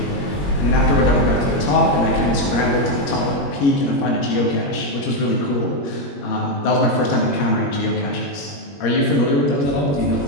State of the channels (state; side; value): late; right; 21 ms